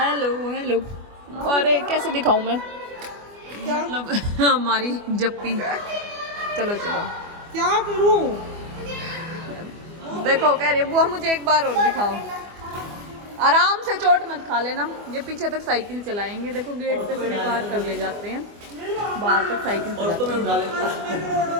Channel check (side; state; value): left; late; 24 ms